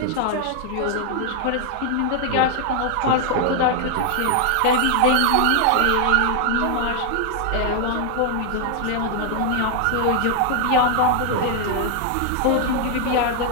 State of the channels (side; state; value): both; different; correlation 0.00